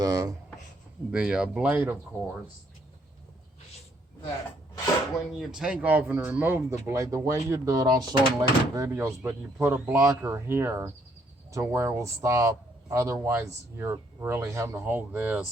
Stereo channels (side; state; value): both; normal; correlation 0.69